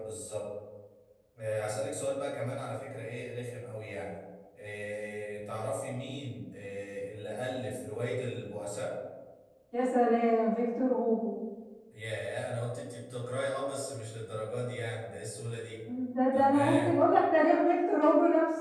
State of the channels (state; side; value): identical; both; correlation 1.00